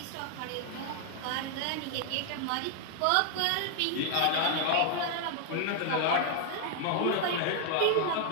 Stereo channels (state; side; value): different; both; correlation 0.00